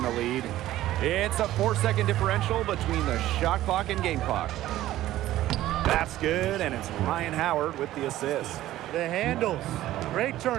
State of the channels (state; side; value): quieter; left; 14.5 dB